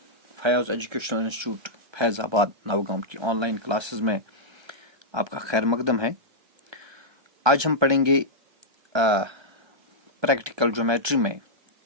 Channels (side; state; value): left; late; 1.3 ms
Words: Fayaz educational institute Faizabad Navgaon की ऑनलाइन क्लासेस में आपका खैर मकदम है। आज हम पढ़ेंगे प्रैक्टिकल ज्योमेट्री में